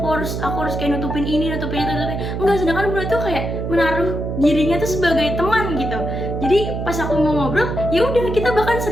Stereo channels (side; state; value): right; noise; hum, 4 dB below the sound